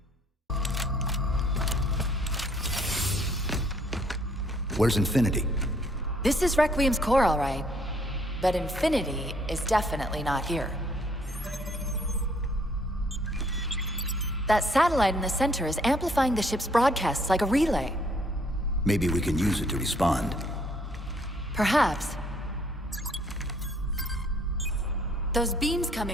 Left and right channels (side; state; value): both; normal; correlation 0.64